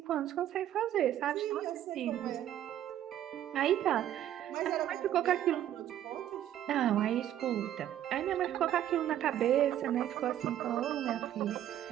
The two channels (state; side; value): quieter; left; 11.6 dB